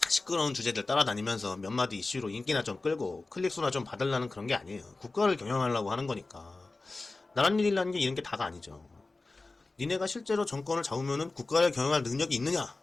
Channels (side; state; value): right; quieter; 3.4 dB